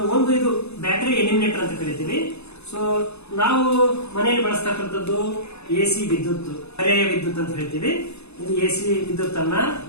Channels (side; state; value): right; late; 0.80 ms